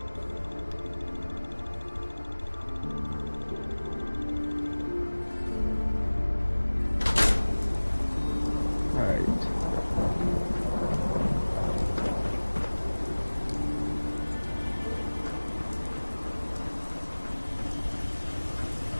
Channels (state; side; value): inverted; both; correlation -1.00